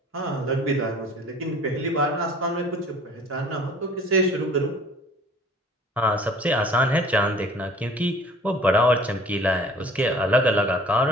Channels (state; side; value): normal; both; correlation 0.50